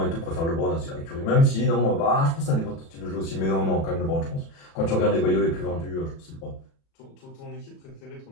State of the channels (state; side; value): late; right; 36 ms